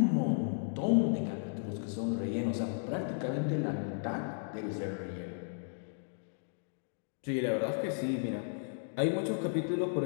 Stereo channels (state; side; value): silent; right; digital silence